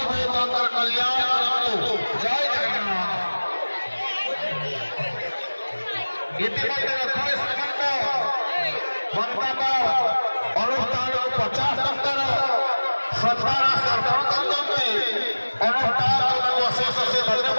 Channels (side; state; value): both; inverted; correlation -1.00